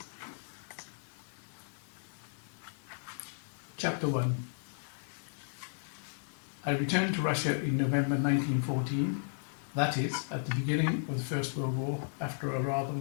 Chapter 1. I returned to Russia in November 1914, that is, at the beginning of the First World War, after a rather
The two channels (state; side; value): silent; right; digital silence